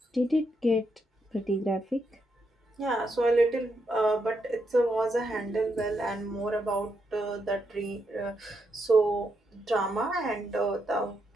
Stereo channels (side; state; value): both; normal; correlation 0.81